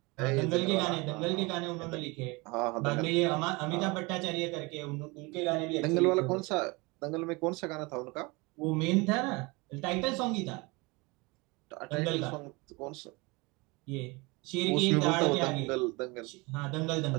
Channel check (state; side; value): quieter; left; 25.8 dB